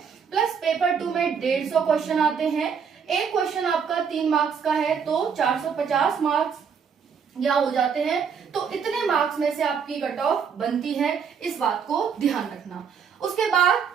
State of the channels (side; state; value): left; quieter; 6.7 dB